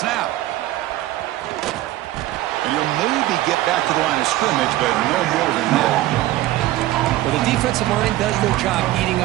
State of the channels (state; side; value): quieter; left; 15.7 dB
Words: And he'll maybe get back to the line of scrimmage, but no more than that. Well, the defensive line does their job eating